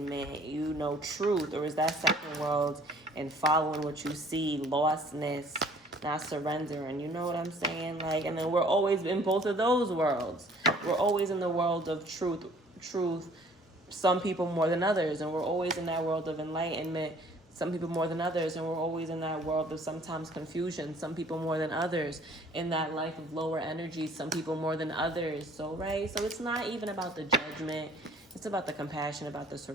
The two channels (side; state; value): both; normal; correlation 0.55